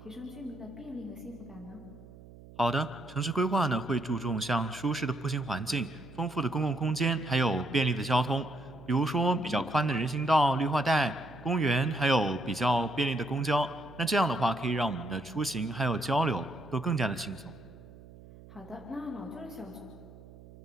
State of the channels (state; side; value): noise; right; hum, 19 dB below the sound